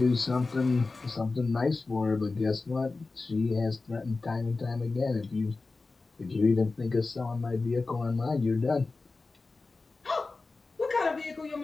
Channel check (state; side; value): quieter; right; 3.7 dB